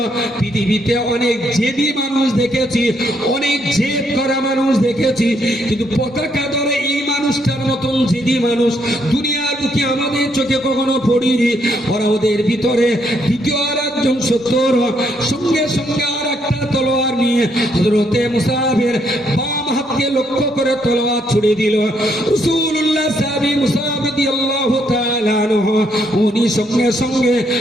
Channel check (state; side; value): normal; both; correlation 0.73